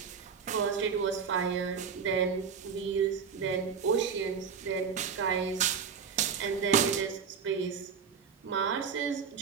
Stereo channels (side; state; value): left; quieter; 6.4 dB